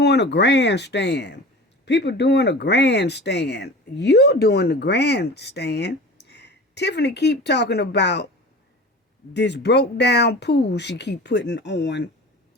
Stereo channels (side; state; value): both; normal; correlation 0.37